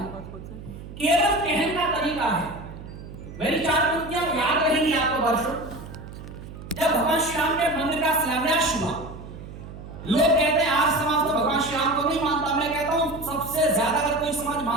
केवल कहने का तरीका है। मेरी 4 पंक्तियां याद रहेंगी आपको वर्षों। जब भगवान श्री राम के मंदिर का शिलान्यास हुआ, लोग कहते हैं आर्य समाज तो भगवान श्री राम को नहीं मानता। मैं कहता हूं सबसे ज्यादा अगर कोई समाज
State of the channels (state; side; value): noise; right; hum, 13 dB below the sound